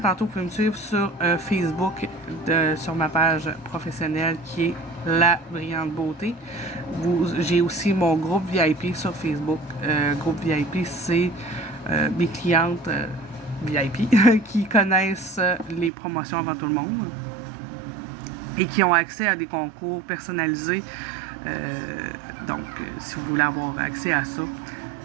vous pouvez me suivre sur Facebook, sur ma page professionnelle qui est La Brillante Beauté. J'ai aussi mon groupe VIP sur Facebook. Groupe VIP, c'est mes clientes VIP qui connaissent les promotions avant tout le monde et qui ont accès à des concours personnalisés. Donc, si vous voulez avoir accès à ça,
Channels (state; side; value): drops out; left; at 15.9 s